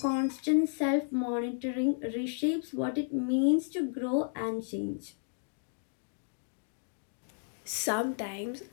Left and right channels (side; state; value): right; silent; digital silence